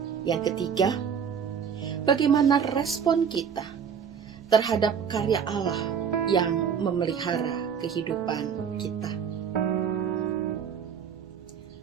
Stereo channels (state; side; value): quieter; left; 7.3 dB